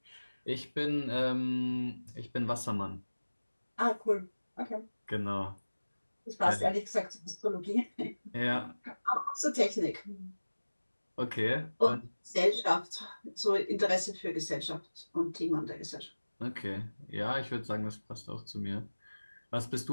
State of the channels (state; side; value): inverted; both; correlation -1.00